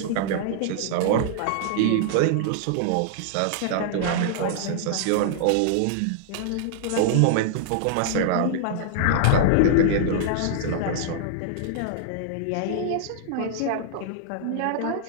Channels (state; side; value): different; both; correlation -0.01